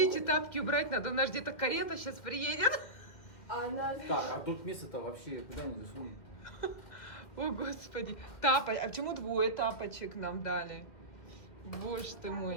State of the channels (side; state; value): right; late; 2.2 ms